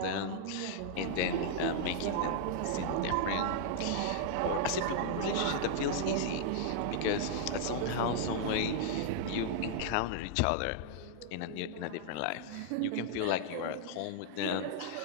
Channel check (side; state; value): both; different; correlation -0.01